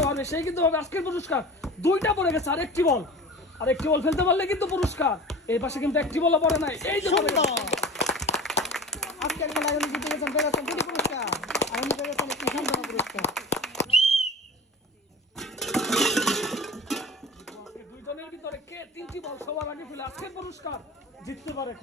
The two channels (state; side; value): normal; both; correlation 0.36